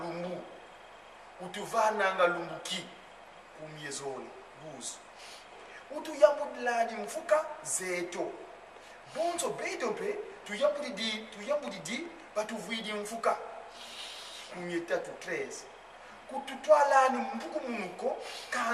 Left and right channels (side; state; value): both; identical; correlation 1.00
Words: utuvananga lumbuki kumyezoli 12. Utuyambudilani mfuka zeto bonzo bedope tuyambudidi batuvidi mfuka kumyetatu 13. Kututwalani mbuku munuko